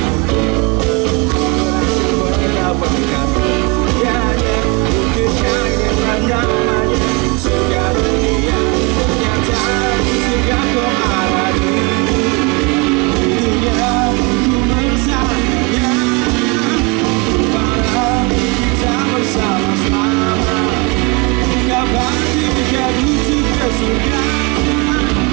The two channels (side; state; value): left; quieter; 27.8 dB